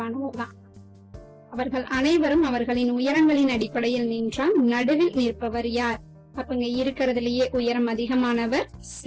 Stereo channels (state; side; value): identical; both; correlation 1.00